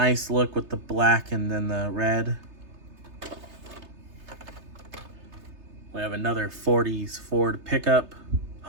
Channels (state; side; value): late; left; 3.3 ms